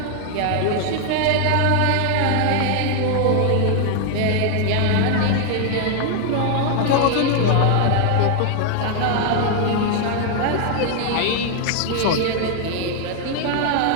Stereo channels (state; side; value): different; both; correlation 0.00